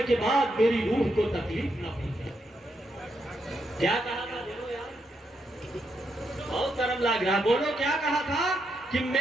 کے بعد میری روح کو تکلیف نہ پہنچے. کیا کہا تھا؟ بولو یار، بہت گرم لگ رہا. بولو کیا کہا تھا؟ کہ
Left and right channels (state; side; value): normal; both; correlation 0.80